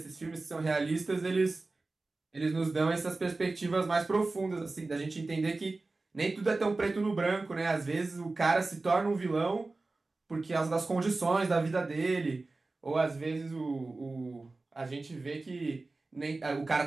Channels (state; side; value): quieter; left; 3.4 dB